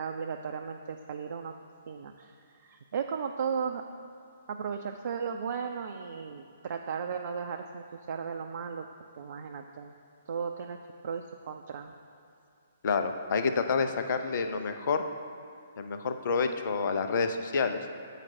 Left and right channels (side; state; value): both; inverted; correlation -0.63